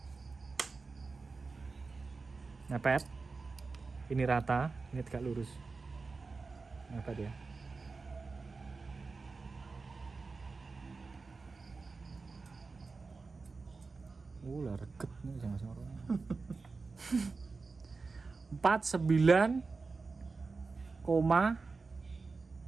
Ngepet. Ini rata, ini tegak lurus. Ngepet ya. Lah reket nih jangan sorong. 49,7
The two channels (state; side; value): quieter; left; 4.2 dB